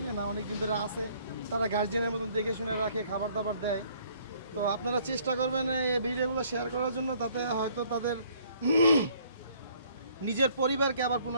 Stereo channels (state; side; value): inverted; both; correlation -0.61